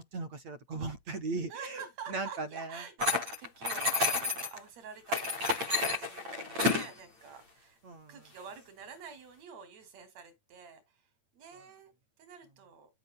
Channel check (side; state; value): left; late; 8.8 ms